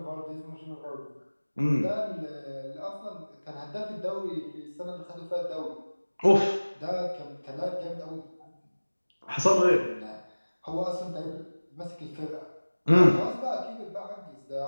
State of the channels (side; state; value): both; inverted; correlation -1.00